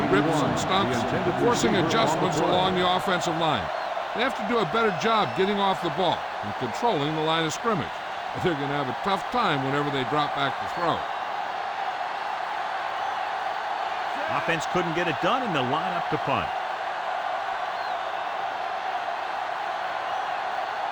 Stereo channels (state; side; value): identical; both; correlation 1.00